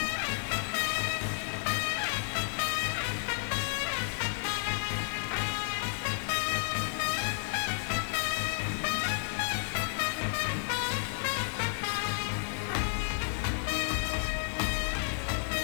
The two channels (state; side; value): silent; right; digital silence